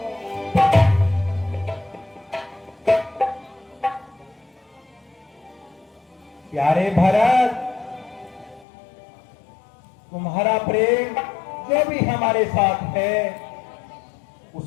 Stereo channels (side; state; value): right; drops out; at 8.7 s